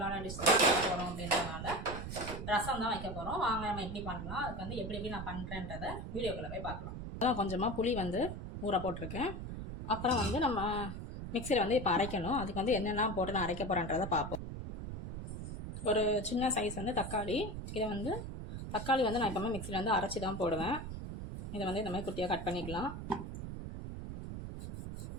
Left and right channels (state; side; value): noise; right; rumble, 7 dB below the sound